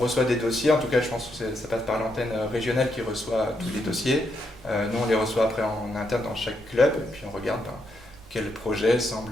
des dossiers, en tout cas je pense que ça passe par l'antenne régionale qui reçoit tous les dossiers. Nous on les reçoit après en interne dans chaque club, et puis on regarde quel projet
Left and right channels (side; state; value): both; normal; correlation 0.79